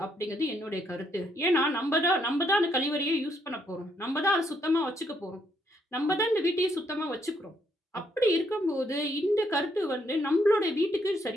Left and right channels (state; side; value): normal; both; correlation 0.73